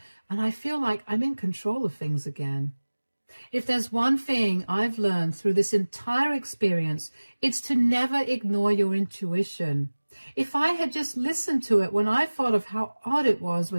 and I feel like I'm in control of things again. If there's one thing I've learned through this entire experience, it's to never ignore your intuition. If I had just listened to it when I thought of how odd it was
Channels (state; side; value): inverted; both; correlation -1.00